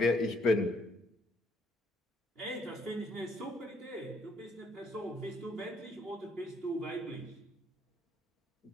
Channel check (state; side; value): normal; both; correlation 0.68